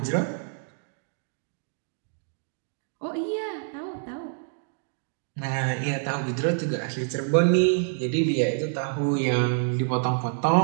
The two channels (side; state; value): left; silent; digital silence